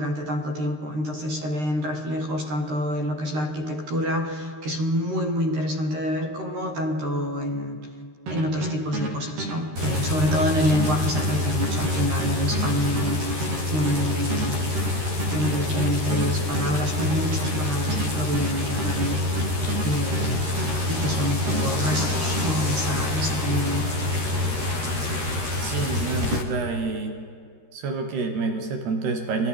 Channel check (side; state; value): left; late; 13 ms